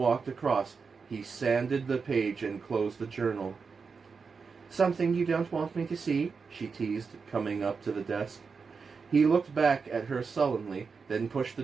across, he sanded the page and closed the journal. Something you don't want me to see? She teased, coming up to the desk. He looked back at her sullenly, then pushed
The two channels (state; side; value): quieter; left; 5.2 dB